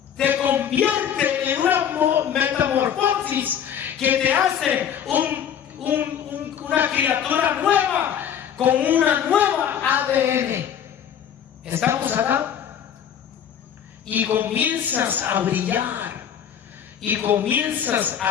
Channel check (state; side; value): quieter; right; 8.9 dB